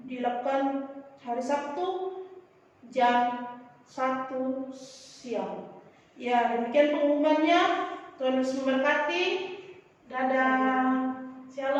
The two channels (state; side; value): identical; both; correlation 1.00